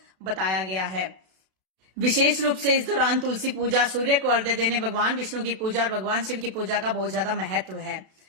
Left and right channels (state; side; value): late; left; 32 ms